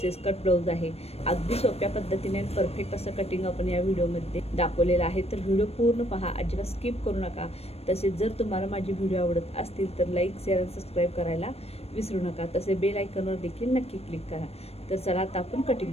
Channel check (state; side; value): late; right; 0.29 ms